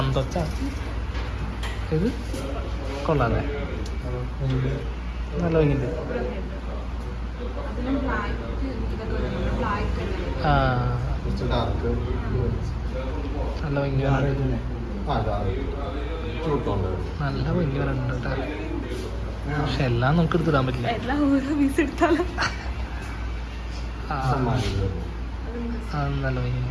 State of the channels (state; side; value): identical; both; correlation 1.00